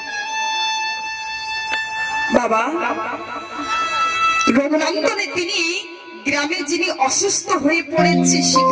বাবা রঘুনন্দনে তিনি গ্রামে যিনি অসুস্থ হয়ে পড়েছে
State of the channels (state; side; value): identical; both; correlation 1.00